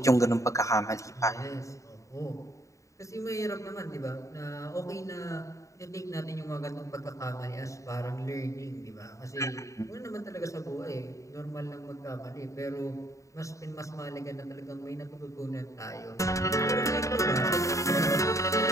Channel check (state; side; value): late; right; 0.15 ms